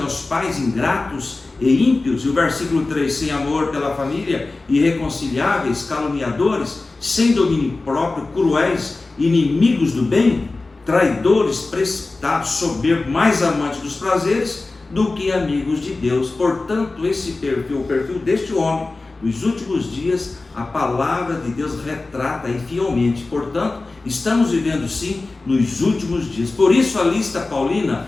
pais, ingratos e ímpios. E o versículo 3: sem amor pela família, irreconciliáveis, caluniadores, sem domínio próprio, cruéis, inimigos do bem, traidores, precipitados, soberbos, mais amantes dos prazeres do que amigos de Deus. Portanto, esse perfil, o perfil deste homem, nos últimos dias, a palavra de Deus retrata aí fielmente. Portanto, estamos vivendo sim nos últimos dias. Por isso a lista paulina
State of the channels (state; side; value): quieter; right; 3.4 dB